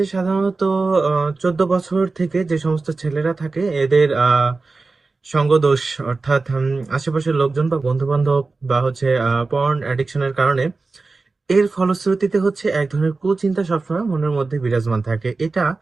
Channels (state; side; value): quieter; left; 3.8 dB